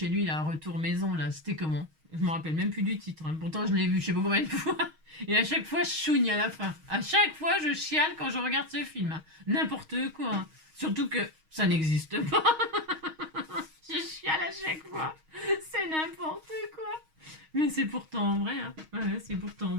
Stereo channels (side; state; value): left; late; 6.4 ms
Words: lui, là, retour maison, là. C'était comment? Je me rappelle même plus du titre. Hein. Pourtant, je l'ai vu je sais pas combien de fois. Et à chaque fois, je chouigne à la fin. À chaque fois, je chiale quand je regarde ce film. Hein. N'importe quoi. Hein. Surtout que ça n'existe pas. Je chiale à chaque fois. C'est n'importe quoi. Mais c'est pourtant vrai. Hein. Ouais, c'est pourtant